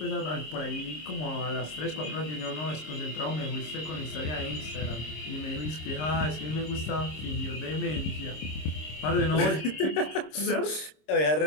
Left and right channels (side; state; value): right; late; 26 ms